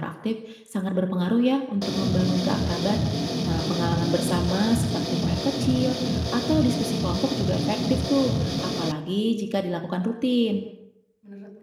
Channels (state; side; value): identical; both; correlation 1.00